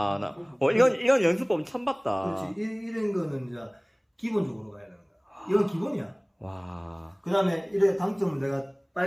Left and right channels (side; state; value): both; identical; correlation 1.00